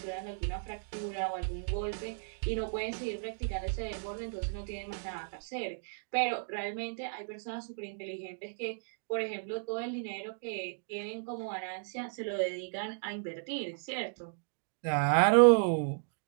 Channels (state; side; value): silent; left; digital silence